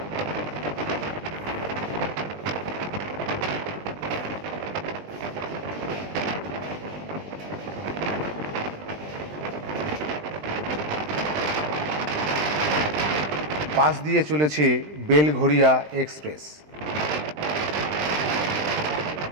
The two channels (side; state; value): left; late; 20 ms